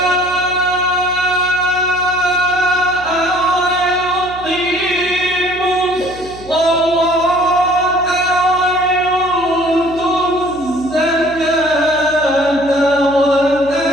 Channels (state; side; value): noise; right; hum, 18 dB below the sound